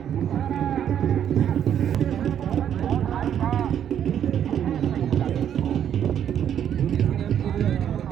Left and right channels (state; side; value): quieter; left; 9.5 dB